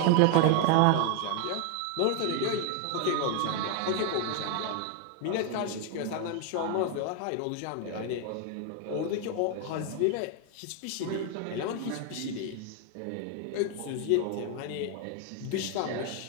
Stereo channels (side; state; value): both; different; correlation 0.01